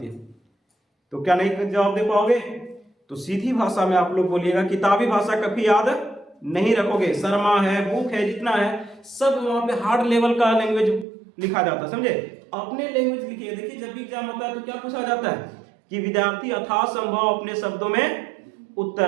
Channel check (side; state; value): left; drops out; at 11.1 s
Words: हैं। तो क्या नहीं जवाब दे पाओगे? तो सीधी भाषा में आप लोग बोलिएगा, किताबी भाषा कभी याद नहीं रखोगे। शर्मा है, बुक है, जितना है सब वहां पे हार्ड लेवल का लैंग्वेज लिखा जाता है। समझे? अपने लैंग्वेज लिखिए। देखिए, जब भी एग्जाम होता है तो क्या पूछा जाता है कि विद्यार्थी यथासंभव अपने शब्दों में